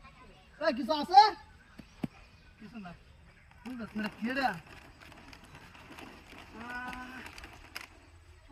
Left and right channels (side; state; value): both; identical; correlation 1.00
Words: এই কিছু আছে কিছু না মেরে কে রে